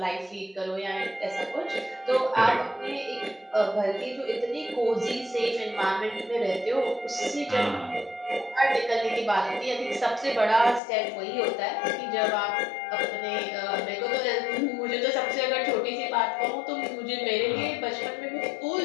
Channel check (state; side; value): drops out; right; at 10.8 s